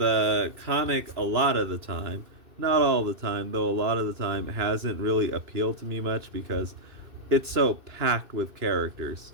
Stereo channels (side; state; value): left; late; 2.6 ms